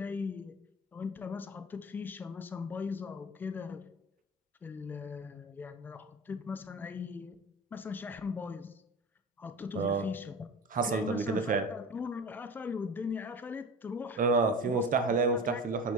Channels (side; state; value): both; normal; correlation 0.32